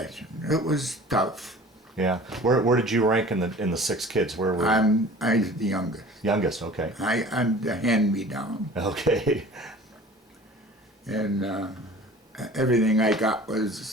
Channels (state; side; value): normal; both; correlation 0.44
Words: It was tough. Yeah. Where did you rank in the 6 kids? Where were you? I was the youngest. Youngest, okay. I'm the hand-me-down. Okay. And everything I got